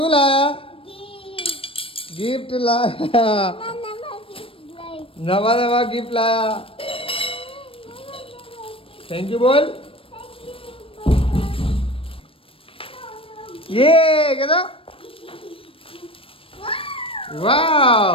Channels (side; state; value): right; late; 0.26 ms